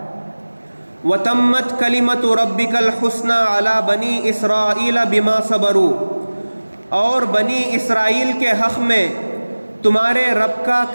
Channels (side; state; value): both; inverted; correlation -1.00